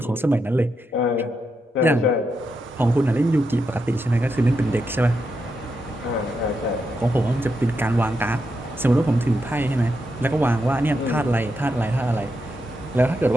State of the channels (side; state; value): both; normal; correlation 0.84